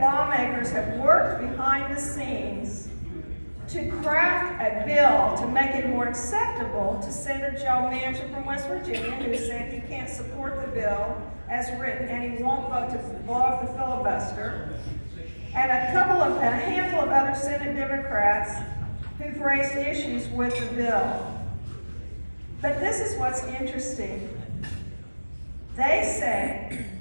lawmakers have worked behind the scenes to craft a bill to make it more acceptable to Senator Joe Manchin from West Virginia, who said he can't support the bill as written and he won't vote to blow up the filibuster, and a handful of other Senate Democrats who've raised issues with the bill. But this is what's interesting. They say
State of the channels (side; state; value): both; inverted; correlation -1.00